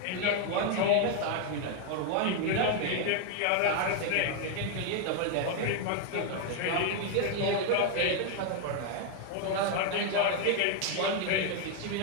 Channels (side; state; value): both; different; correlation 0.01